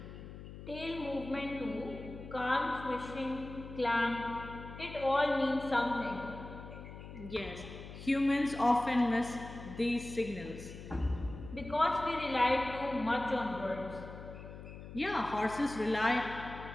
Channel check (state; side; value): noise; left; hum, 12 dB below the sound